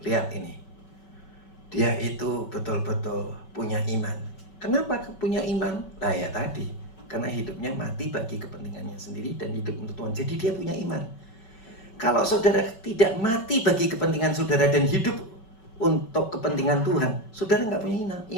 lihat ini. Dia itu betul-betul punya iman. Kenapa punya iman? Nah ya tadi, karena hidupnya mati bagi kepentingannya sendiri dan hidup untuk Tuhan. Jadi dia punya iman. Kalau saudara tidak mati bagi kepentingan saudara dan hidup untuk kepentingan Tuhan, saudara nggak punya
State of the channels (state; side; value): late; right; 5.3 ms